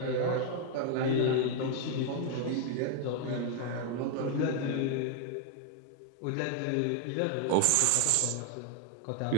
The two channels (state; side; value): different; both; correlation 0.00